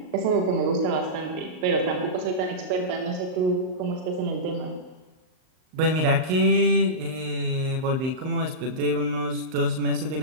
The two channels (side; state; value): left; late; 38 ms